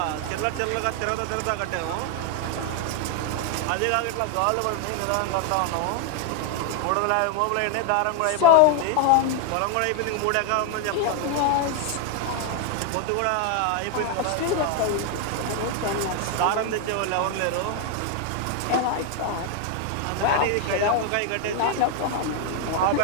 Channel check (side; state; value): both; different; correlation 0.00